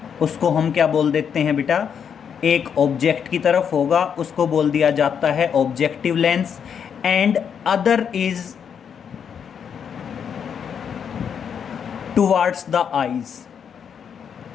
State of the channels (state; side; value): quieter; right; 7.5 dB